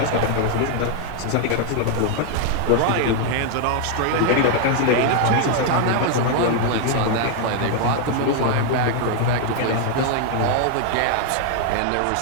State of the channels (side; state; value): both; different; correlation 0.00